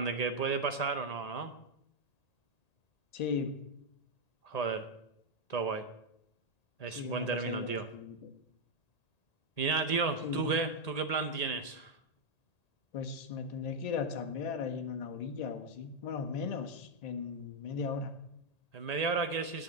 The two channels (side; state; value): right; late; 1.8 ms